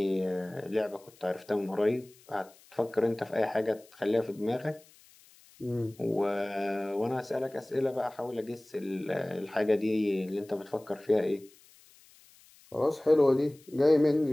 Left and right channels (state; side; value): noise; left; hiss, 27 dB below the sound